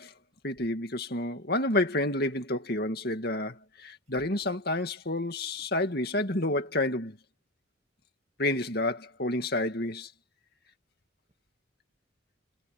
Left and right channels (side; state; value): both; normal; correlation 0.19